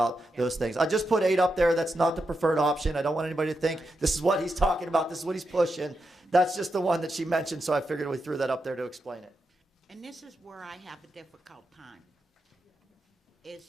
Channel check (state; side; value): normal; both; correlation 0.86